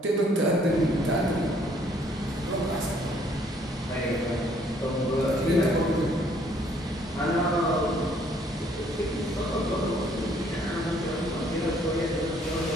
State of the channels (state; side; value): normal; both; correlation 0.63